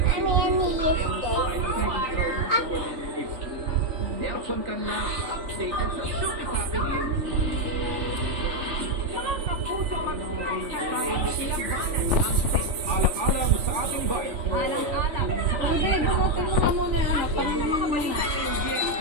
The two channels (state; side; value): late; left; 3.4 ms